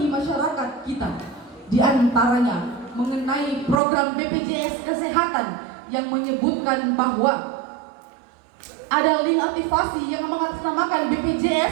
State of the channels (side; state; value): left; drops out; at 3.8 s